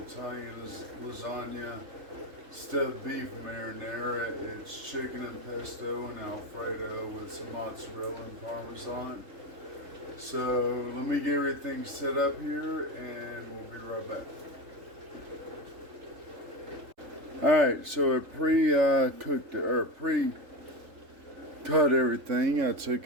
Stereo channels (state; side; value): late; left; 3.4 ms